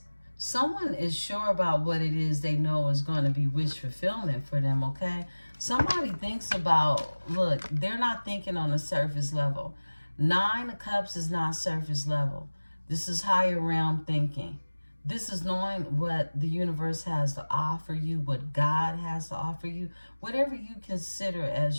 Someone is sure about what it is they know is going to be wish fulfillment for them, okay? Somebody thinks about, look, they're not thinking on a surface level. Nine of Cups is not surface level. This is higher realm thinking. This is knowing what the universe has to offer you, what God has to offer you, whatever you consider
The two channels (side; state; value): both; inverted; correlation -1.00